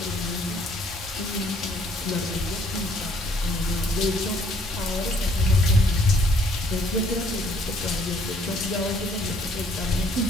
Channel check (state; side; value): normal; both; correlation 0.63